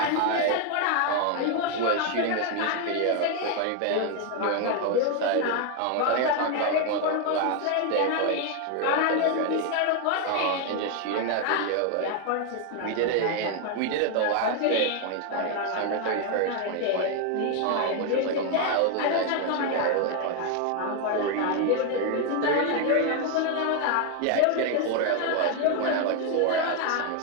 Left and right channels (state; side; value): different; both; correlation 0.01